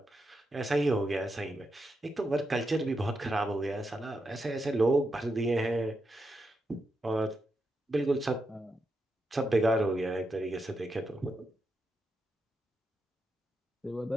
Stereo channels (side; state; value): both; normal; correlation 0.85